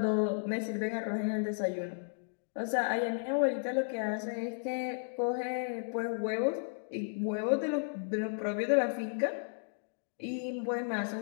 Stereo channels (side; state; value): right; silent; digital silence